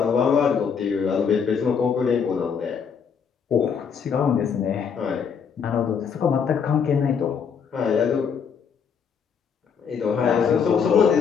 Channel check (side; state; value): right; quieter; 6.6 dB